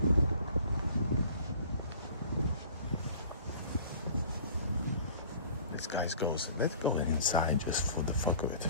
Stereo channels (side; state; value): both; inverted; correlation -0.48